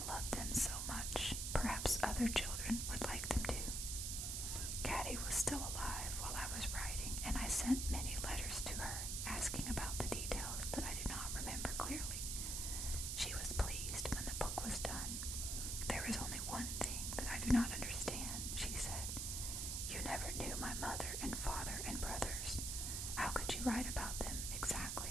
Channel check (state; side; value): noise; right; hiss, 1 dB below the sound